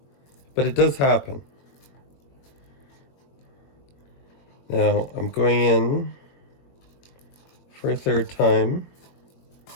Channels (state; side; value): late; right; 21 ms